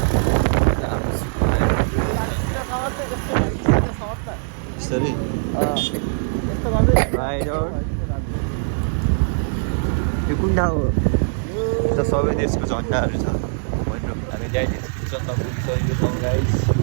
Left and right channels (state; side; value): silent; left; digital silence